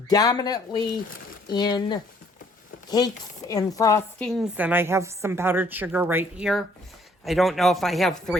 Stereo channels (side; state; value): both; normal; correlation 0.63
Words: in cakes and frostings, and I have some powdered sugar right here. I don't know if I have